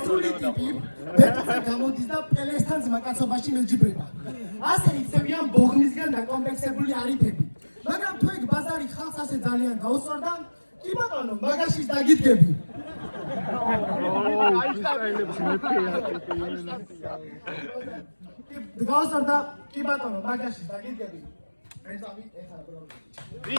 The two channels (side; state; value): both; inverted; correlation -1.00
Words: ტიპი ბეთზე გამოდის და პელესთან ზმაკაცობაში მეჯიბრება. ასე იქცევიან ბოღმისგან დაკომპლექსებული არიფები. მაგრამ თუ ეგ ბაზარი ხალხს ასე ძალიან გაუსწორდა, კი ბატონო, მაგაშიც დაგიდგები. გაუსწორდა, კი ბატონო, მაგაშიც დაგიდგები.